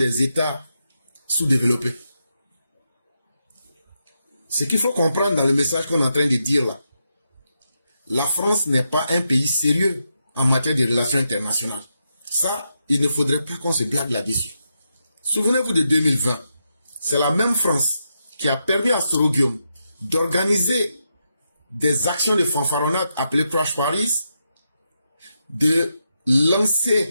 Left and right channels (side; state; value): both; inverted; correlation -0.84